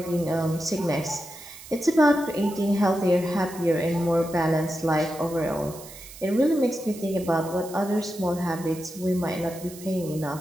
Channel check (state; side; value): noise; right; hiss, 16 dB below the sound